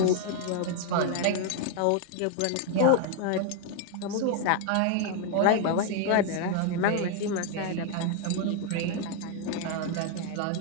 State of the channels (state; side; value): different; both; correlation 0.00